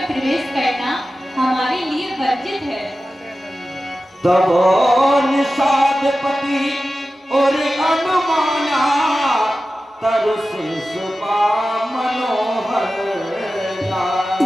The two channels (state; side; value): normal; both; correlation 0.94